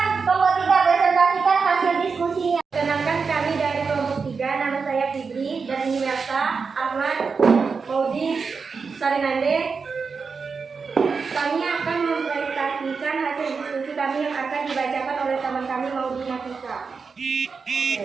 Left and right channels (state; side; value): quieter; left; 5.1 dB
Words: kelompok 3 presentasikan hasil diskusinya. Perkenalkan kami dari kelompok 3, nama saya Fitri dan ini Melsa, Ahmad,